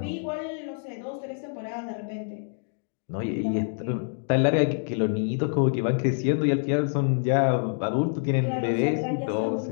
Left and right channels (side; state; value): right; silent; digital silence